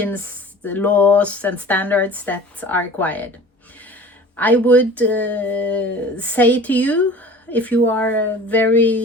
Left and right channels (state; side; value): normal; both; correlation 0.43